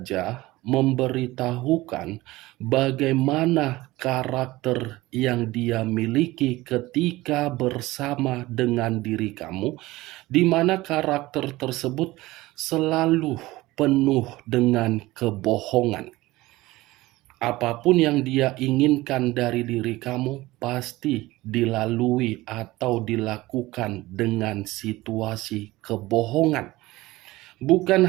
memberitahukan bagaimana karakter yang dia miliki ketika bersama dengan diri kamu, di mana karakter tersebut selalu penuh dengan kebohongan. Apapun yang dia inginkan dari diri kamu pasti dilalui atau dilakukan dengan situasi kebohongan. Bukan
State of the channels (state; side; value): quieter; left; 18.9 dB